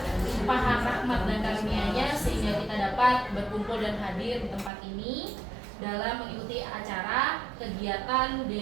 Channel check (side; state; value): left; drops out; at 4.7 s